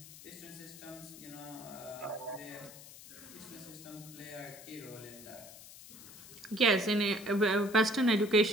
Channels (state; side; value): noise; left; hiss, 17 dB below the sound